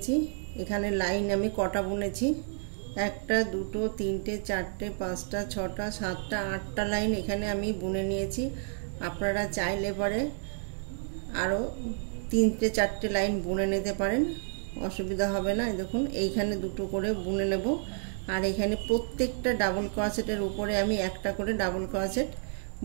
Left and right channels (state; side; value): silent; left; digital silence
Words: এখানে লাইন আমি কটা বুনেছি, একটা, দুটো, তিনটে, চারটে, পাঁচটা, ছটা, সাতটা, 8টা লাইন এখানে আমি বুনে নিয়েছি। আপনারা চাইলে পরে আরও 3টে 4টে লাইন বুনে নিতে পারেন, অসুবিধা হবে না। দেখুন এইখানে দুটো করে বুনে নেব, আর এখানে প্রত্যেকটা ডাবল ক্রোশেটের উপরে আমি একটা করে ডাবল ক্রোশেট